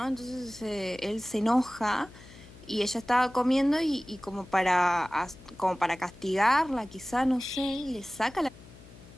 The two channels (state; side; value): noise; left; hum, 20 dB below the sound